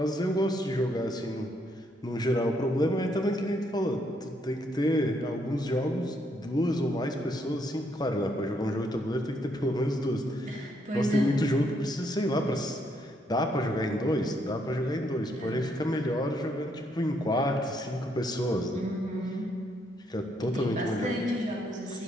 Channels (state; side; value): normal; both; correlation 0.73